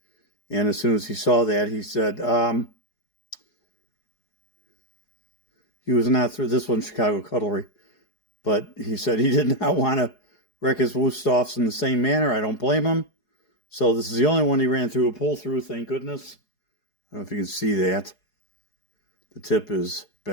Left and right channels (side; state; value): right; late; 4.8 ms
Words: And as soon as he saw that, he said, he was not through this one, Chicago Cutlery, but he said he did not want to wreck his Wusthoffs in the same manner. I don't blame him. So this is the only one he ran through a pull-through, thank goodness. I don't know if you can see that. The tip is